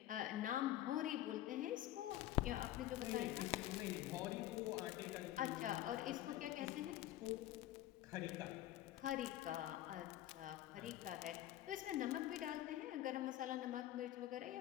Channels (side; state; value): right; quieter; 14.0 dB